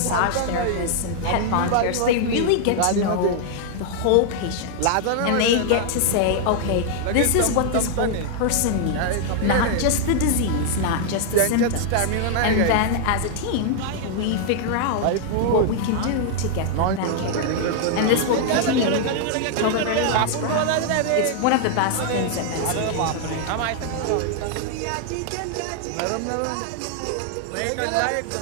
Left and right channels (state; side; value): different; both; correlation 0.00